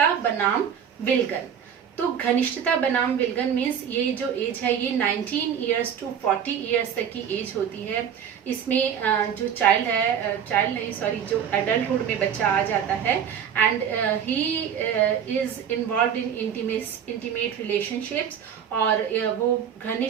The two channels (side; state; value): left; quieter; 8.3 dB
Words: बनाम विलगन। तो घनिष्ठता बनाम विलगन मीन्स ये जो एज है ये 19 इयर्स टू 40 इयर्स तक की एज होती है। इसमें जो जो एडल्टहुड में बच्चा आ जाता है and he is involve in intimate relationships, और वो